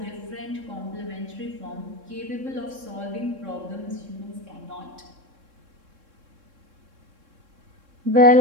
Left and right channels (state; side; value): late; left; 3.7 ms